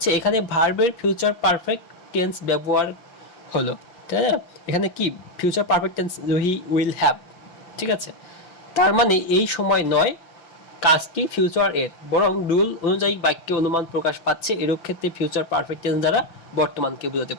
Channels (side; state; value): right; late; 5.9 ms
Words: এখানে ভার্বের ফিউচার পারফেক্ট টেন্স ব্যবহার হলো, তাই না? এখানে কি future perfect tense Ruhi will have. ঠিক আছে, তার মানে এই সময় নয়, কাজটি ফিউচার এর, বরং রুল অনুযায়ী বাক্যে অনুমান প্রকাশ পাচ্ছে। এরূপ ক্ষেত্রে ফিউচার পারফেক্ট টেন্স দ্বারা বর্তমানকে বোঝাতে